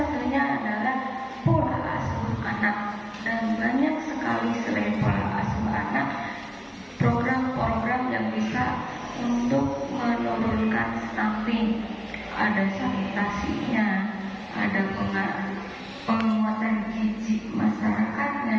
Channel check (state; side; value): identical; both; correlation 1.00